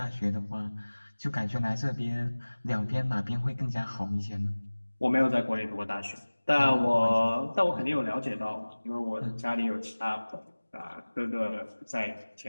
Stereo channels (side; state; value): both; inverted; correlation -1.00